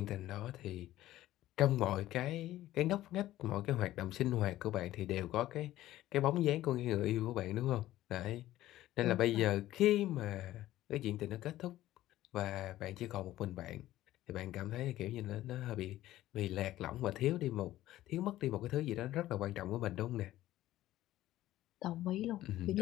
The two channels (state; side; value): quieter; right; 14.7 dB